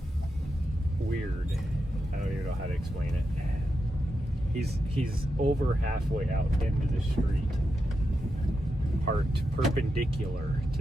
weird. I don't even know how to explain it. He's over halfway out into the street, parked perpendicular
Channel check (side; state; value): both; normal; correlation 0.87